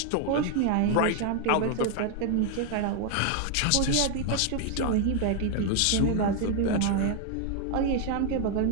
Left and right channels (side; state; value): both; different; correlation 0.01